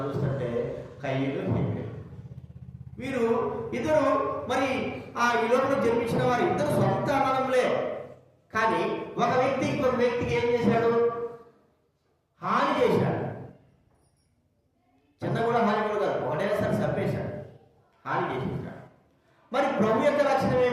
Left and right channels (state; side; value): identical; both; correlation 1.00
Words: చూస్తుంటే కయ్యూలు, హేబెలు వీరు ఇద్దరు మరి ఈ లోకంలో జన్మించిన వారు ఇద్దరు సొంత అన్నదమ్ములే. కానీ ఒక వ్యక్తి ఇంకొక వ్యక్తికి ఏం చేశాడు? హాని చేశాడు. చిన్న కూడా హాని కూడా కాదు, ఒకటేసారి చంపేశాడు, హాని చేసేసాడు. మరి ప్రభు యొక్క లక్షణం